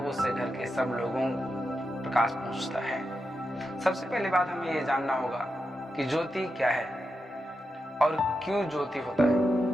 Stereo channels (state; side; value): normal; both; correlation 0.88